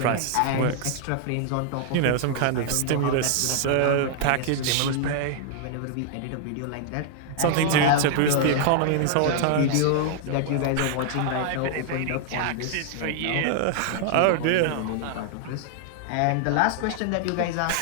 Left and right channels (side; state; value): both; different; correlation -0.01